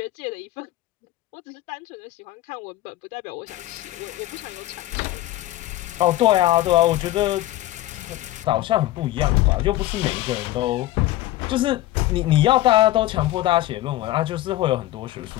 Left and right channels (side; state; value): right; quieter; 15.6 dB